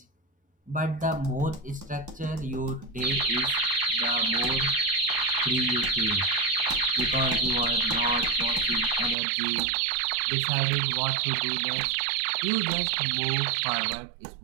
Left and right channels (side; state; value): left; drops out; at 9.2 s